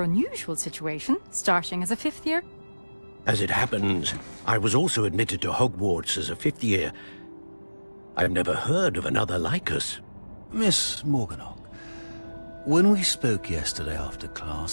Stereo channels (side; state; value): both; inverted; correlation -1.00